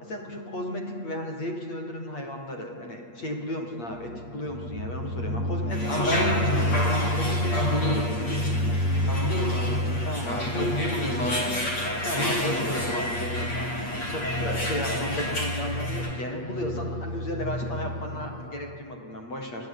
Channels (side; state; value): right; late; 8.5 ms